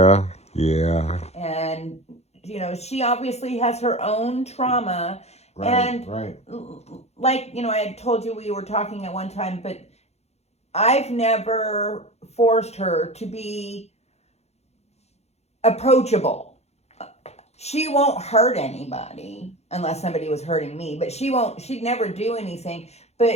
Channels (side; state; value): right; late; 0.31 ms